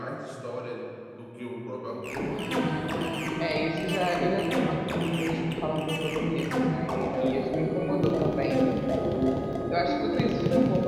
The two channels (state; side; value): identical; both; correlation 1.00